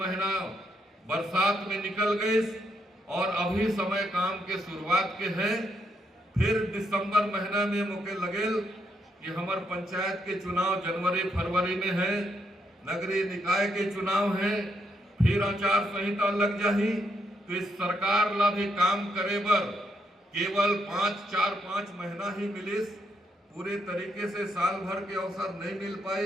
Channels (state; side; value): normal; both; correlation 0.77